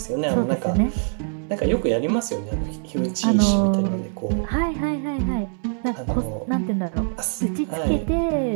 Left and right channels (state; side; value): silent; left; 57 dB below the other